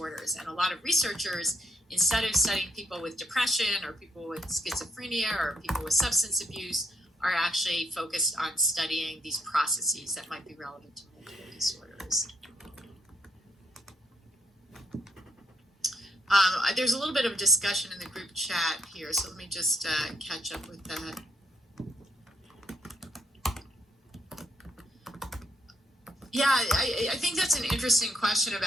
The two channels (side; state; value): both; normal; correlation 0.74